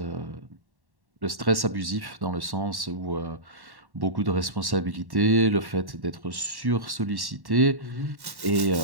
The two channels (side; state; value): left; late; 1.1 ms